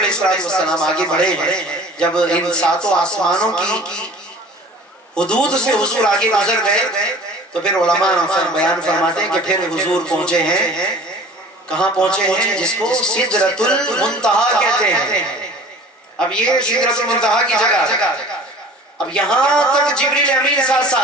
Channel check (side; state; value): both; normal; correlation 0.45